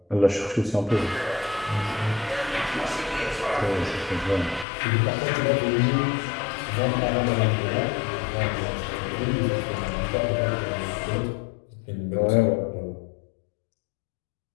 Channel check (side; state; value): right; drops out; at 4.7 s